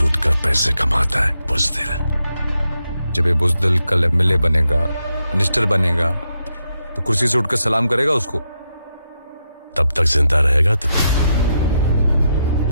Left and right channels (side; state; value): both; inverted; correlation -0.83